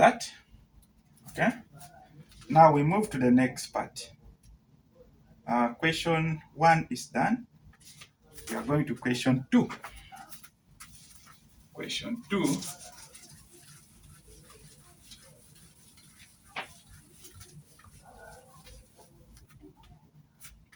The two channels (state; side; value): identical; both; correlation 1.00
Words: Okay? Now we move to the next part. Question 1 is done. We are going to question 2. Question 2.